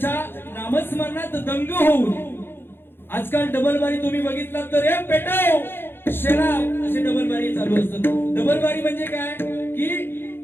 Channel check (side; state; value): right; late; 0.10 ms